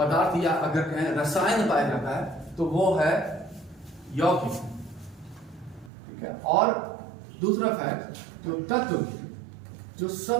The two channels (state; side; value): drops out; left; at 5.9 s